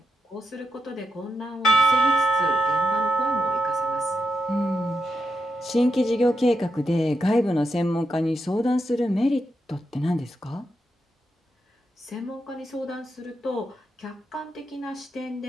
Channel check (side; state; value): both; normal; correlation 0.84